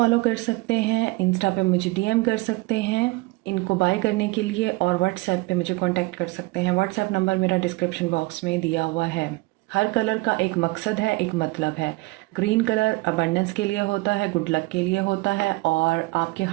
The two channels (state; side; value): quieter; left; 22.8 dB